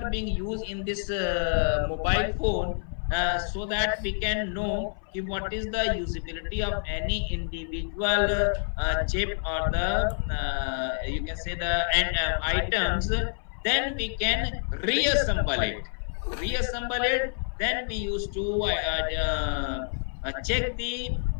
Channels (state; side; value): silent; right; 57 dB below the other